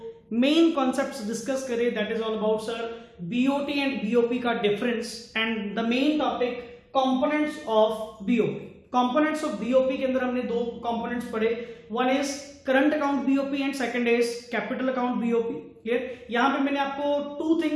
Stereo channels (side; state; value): both; identical; correlation 1.00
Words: मेन कॉन्सेप्ट्स डिस्कस करे that is all about sir BOT and BOP का difference and the main topic components of BOP. Components of BOP के अंदर हमने दो कंपोनेंट्स पढ़े, one is current account BOP and second is capital account BOP. Clear. यहां पे मैंने आपको टू